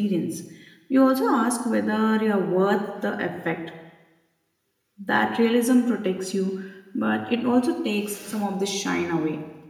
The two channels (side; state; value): both; identical; correlation 1.00